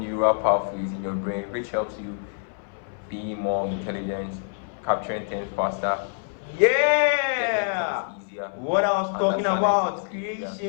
pathways in your brain, which helps you be more intelligent, capturing things faster, Yeah! getting things easier, What I was talking about, understanding things easier.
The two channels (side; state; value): right; silent; 59 dB below the other